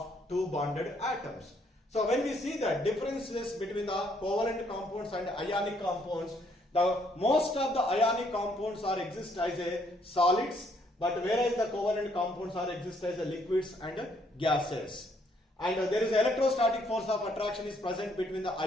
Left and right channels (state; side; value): normal; both; correlation 0.69